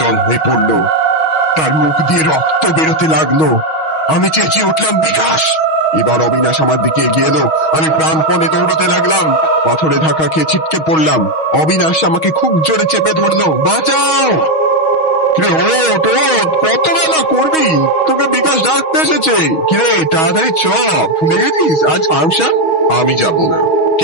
হয়ে পড়ল, তার মুখ দিয়ে রক্ত বেরোতে লাগলো। আমি চেঁচিয়ে উঠলাম, বিকাশ! এবার অবিনাশ আমার দিকে এগিয়ে এলো। আমি প্রাণপণে দৌড়তে লাগলাম। পাথরে ধাক্কা খেয়ে ছিটকে পড়লাম। অবিনাশ আমাকে খুব জোরে চেপে ধরলো। বাঁচাও! কত বেলা করবি? তোকে বিকাশ ডাকতে এসেছে। কিরে, তাড়াতাড়ি চ, ভুলে গেছিস আজ ফাংশন? আমি যাব না।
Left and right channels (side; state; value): right; late; 6.3 ms